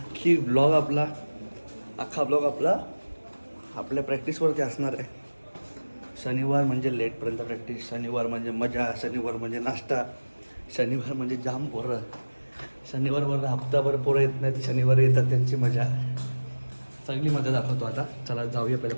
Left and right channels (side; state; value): both; inverted; correlation -1.00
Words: ब्लॉग आपला आपल्या प्रॅक्टिसवरती असणार आहे. शनिवार म्हणजे लेटपर्यंत प्रॅक्टिस, शनिवार म्हणजे मजा, शनिवार म्हणजे नाश्ता, शनिवार म्हणजे जाम पोरं. शनिवारवर हप्ताभर पोरं येत नाहीत, शनिवार येतात त्यांची मजा. चांगली मजा दाखवतो आता. चला जाऊया पहिल्या